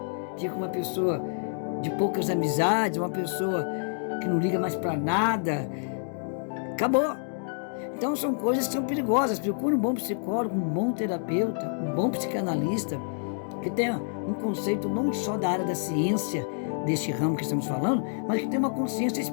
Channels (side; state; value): right; silent; digital silence